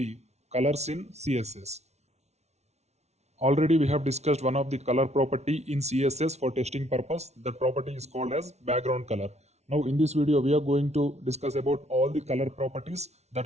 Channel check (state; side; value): late; left; 0.32 ms